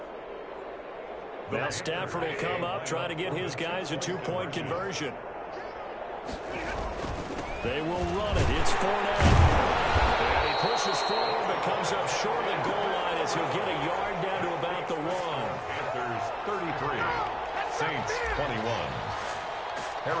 Now Stafford will come up, try to get his guys a 2-point conversion. They will run it. It's Fournette. And he pushes forward, but comes up short of the goal line as he'll get a yard down to about the 1. Panthers 33, Saints 21.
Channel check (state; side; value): identical; both; correlation 1.00